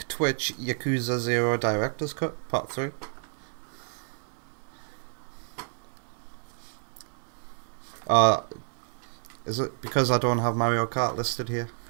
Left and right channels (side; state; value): left; silent; digital silence